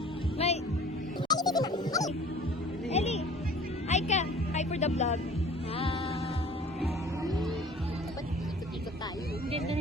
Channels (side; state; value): both; normal; correlation 0.47